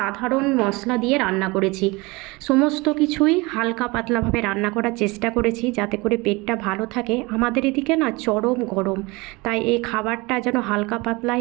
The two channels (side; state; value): left; quieter; 24.3 dB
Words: মশলা দিয়ে রান্না করেছি। সমস্ত কিছুই হালকা পাতলাভাবে রান্না করার চেষ্টা করেছি যাতে করে পেটটা ভালো থাকে। আমাদের এদিকে না চরম গরম, তাই এই খাবারটা যেন হালকা